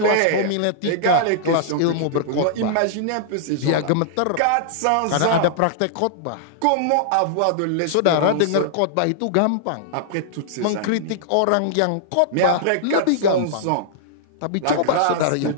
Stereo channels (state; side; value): different; both; correlation -0.01